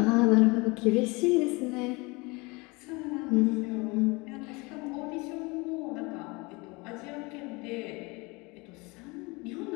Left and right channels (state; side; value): quieter; right; 26.1 dB